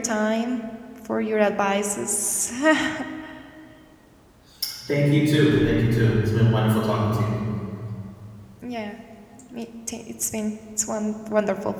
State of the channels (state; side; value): identical; both; correlation 1.00